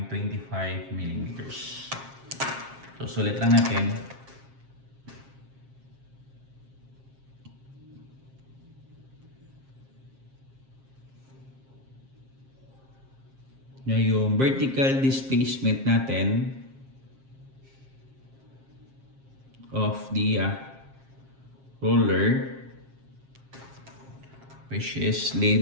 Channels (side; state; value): left; late; 7.5 ms